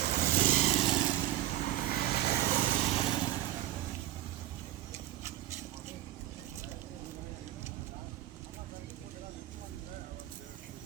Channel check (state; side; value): quieter; left; 14.5 dB